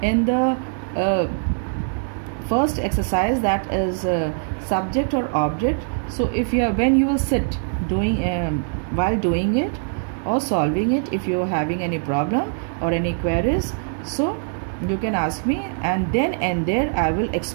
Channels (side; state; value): left; silent; 64 dB below the other